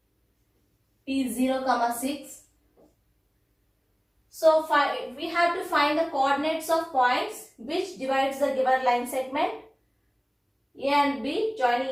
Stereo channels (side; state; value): both; identical; correlation 1.00